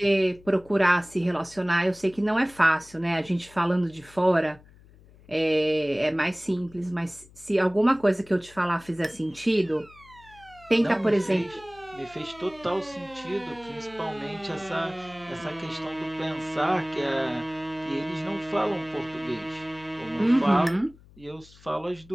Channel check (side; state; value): left; noise; hum, 25 dB below the sound